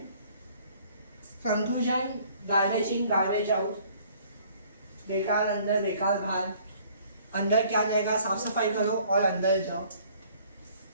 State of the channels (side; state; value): both; inverted; correlation -0.58